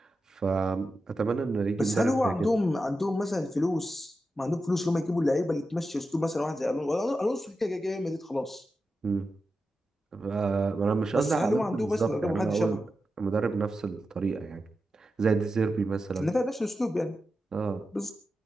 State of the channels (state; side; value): normal; both; correlation 0.90